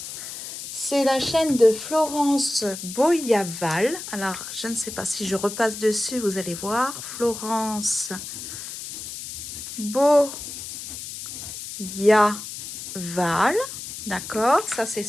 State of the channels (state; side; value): noise; left; hiss, 9 dB below the sound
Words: C'est la chaîne de Florence Boyaval. Alors, je ne sais pas si je repasse dessus, vous allez voir. Florence Boyaval. D'accord, ça c'est